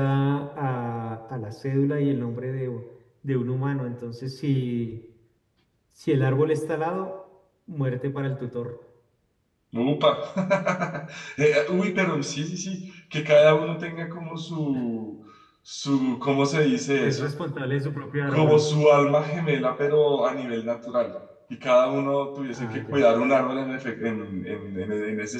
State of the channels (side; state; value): both; identical; correlation 1.00